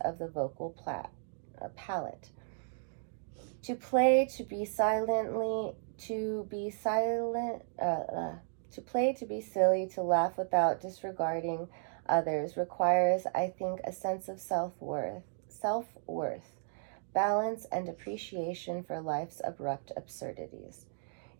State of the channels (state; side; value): silent; left; digital silence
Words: of the vocal palette. To play, to be silent, to be silly, to laugh without disregarding others requires, I think, a sense of self-worth, balance, and appreciation for life's abrupt absurdities.